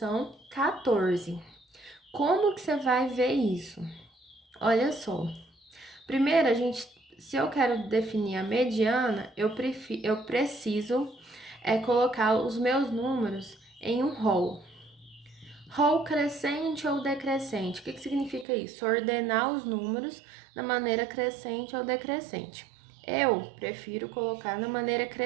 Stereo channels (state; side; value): drops out; left; at 18.4 s